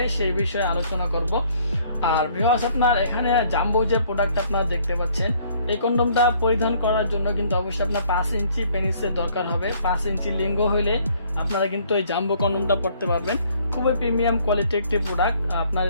সেই বিষয়ে আলোচনা করব। আর ভিউয়ার্স, আপনার এখানে জাম্বো যে প্রোডাক্ট আপনারা দেখতে পাচ্ছেন, এই কন্ডমটা পরিধান করার জন্য কিন্তু অবশ্যই আপনার 5 ইঞ্চি পেনিসের দরকার হবে। 5 ইঞ্চি লিঙ্গ হইলে আপনারা কিন্তু এই জাম্বো কন্ডমটা পড়তে পারবেন। খুবই প্রিমিয়াম কোয়ালিটি একটি প্রোডাক্ট। আপনার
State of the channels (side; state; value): both; inverted; correlation -0.61